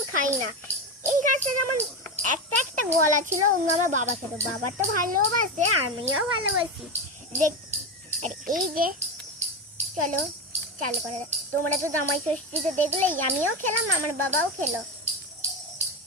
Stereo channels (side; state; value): both; normal; correlation 0.16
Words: খাই না। এই গাছটা যেমন একটা একটা গলা ছিল, অন্য আমার বাবা খেত, বাবা তো ভালোবাসে, আমিও ভালোবাসি দেখ। আর এই যে চলো চালু করে, তোমরা তো জামাই ষষ্ঠীতে দেখলেই, আমিও খেলাম, আমার বাবাও খেলো।